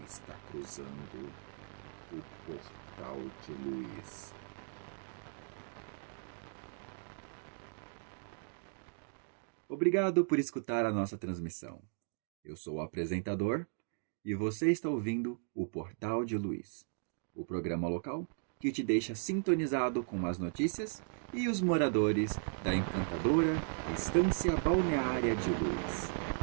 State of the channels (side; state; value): left; silent; digital silence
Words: cruzando o Portal de Luiz. Obrigado por escutar a nossa transmissão. Eu sou o apresentador e você está ouvindo o Portal de Luiz, o programa local que te deixa sintonizado com as notícias e os moradores da encantadora Estância Balneária de Luiz.